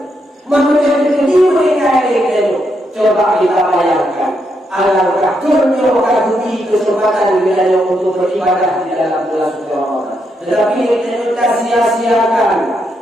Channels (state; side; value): normal; both; correlation 0.80